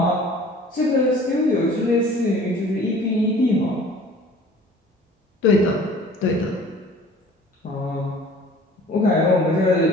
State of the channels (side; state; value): both; normal; correlation 0.48